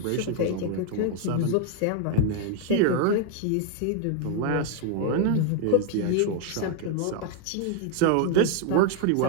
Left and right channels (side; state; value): both; different; correlation 0.00